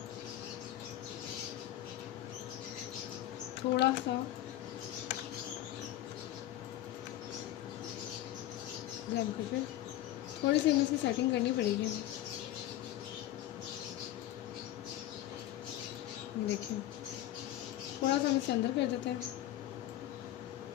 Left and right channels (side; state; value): right; quieter; 13.7 dB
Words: थोड़ा सा जम कटर, थोड़ी सी हमें इसकी सेटिंग करनी पड़ेगी हमें। देखिए, थोड़ा सा हम इसे अंदर कर देते हैं